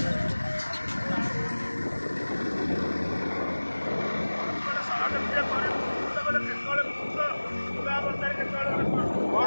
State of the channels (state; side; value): inverted; both; correlation -1.00